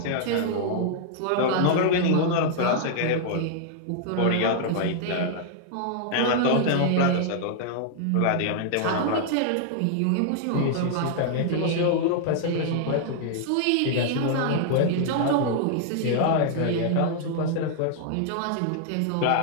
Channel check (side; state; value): both; different; correlation -0.01